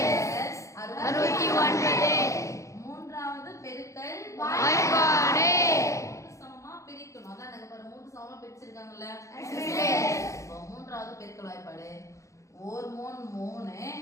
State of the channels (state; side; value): late; right; 0.15 ms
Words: 69. மூன்றாவது பெருக்கல் வாய்ப்பாடு. 3 சமமா பிரிக்கணும். அதான் நாங்க பாரு 3 சமமா பிரிச்சிருக்காங்கல்ல. Yes miss. இப்போ மூன்றாவது பெருக்கல் வாய்ப்பாடு 1 3